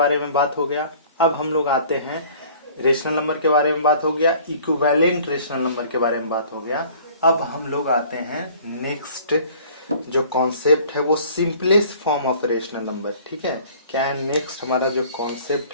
में बात हो गया। अब हम लोग आते हैं, रेशनल नंबर के बारे में बात हो गया, इक्विवेलेंट रेशनल नंबर के बारे में बात हो गया। अब हम लोग आते हैं नेक्स्ट जो कॉन्सेप्ट है वो simplest form of rational number, ठीक है। क्या है नेक्स्ट हमारा जो कॉन्सेप्ट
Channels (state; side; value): inverted; both; correlation -0.51